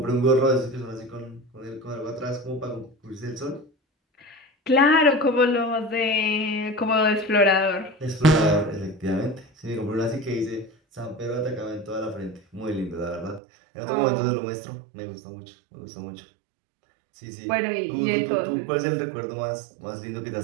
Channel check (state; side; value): drops out; left; at 13.4 s